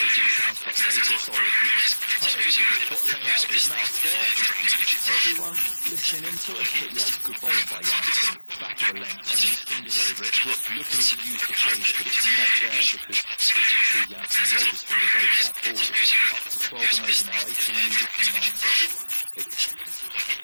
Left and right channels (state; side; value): inverted; both; correlation -1.00